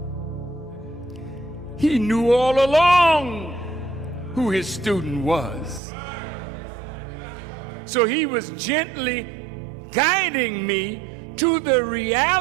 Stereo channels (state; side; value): drops out; left; at 5.8 s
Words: He knew all along who his student was. So he was gently guiding me to the